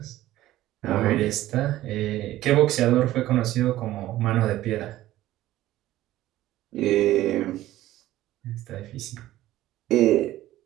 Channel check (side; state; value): left; quieter; 15.0 dB